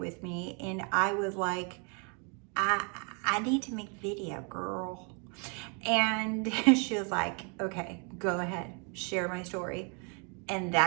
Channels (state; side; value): quieter; left; 36.4 dB